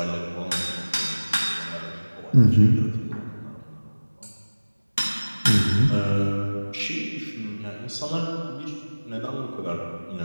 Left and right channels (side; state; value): both; inverted; correlation -1.00